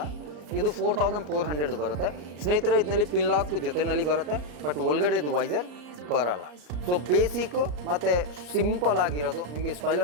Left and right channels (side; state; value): left; late; 34 ms